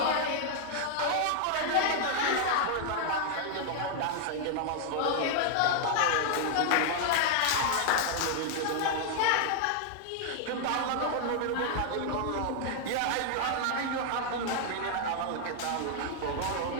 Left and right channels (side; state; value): both; different; correlation -0.01